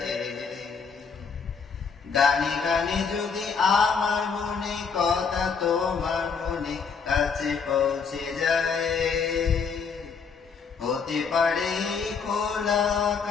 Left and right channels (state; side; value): quieter; right; 5.7 dB